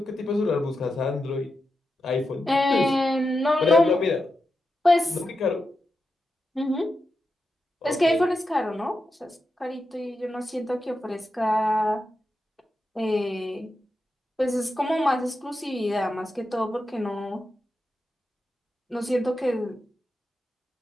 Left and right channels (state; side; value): normal; both; correlation 0.88